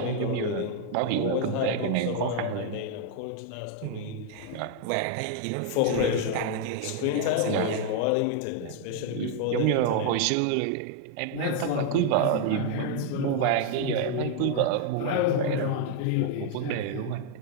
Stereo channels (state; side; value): different; both; correlation 0.00